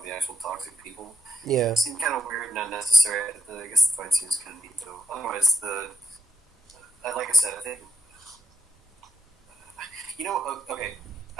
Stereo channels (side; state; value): both; normal; correlation 0.80